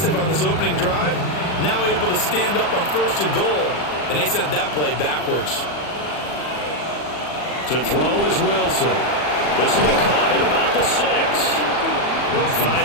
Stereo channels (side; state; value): right; late; 40 ms